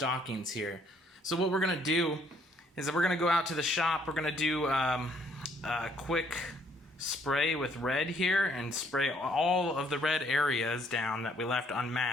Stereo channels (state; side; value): normal; both; correlation 0.66